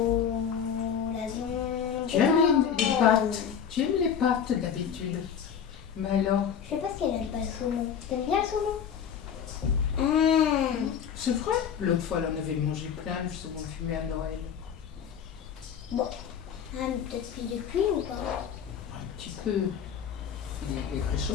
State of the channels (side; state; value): right; quieter; 7.9 dB